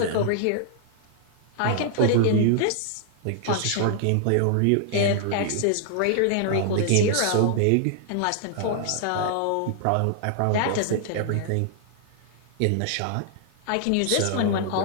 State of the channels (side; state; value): both; different; correlation -0.01